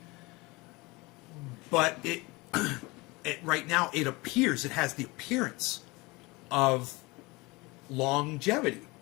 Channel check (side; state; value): right; quieter; 23.9 dB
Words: But it right now, it has the appearance of longevity.